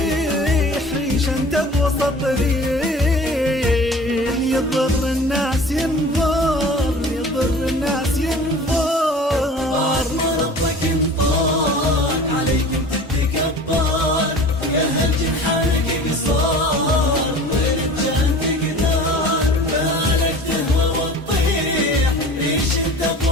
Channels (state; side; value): normal; both; correlation 0.42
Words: ريش انت بوسط ريح، يضر الناس ينظر، يضر الناس ينظر. بعد ما ربك انطاك عليك انت تتكبر، يا هل جنحانك قصار غير كان تقدر. بالك تهوى وتطيح ريش انت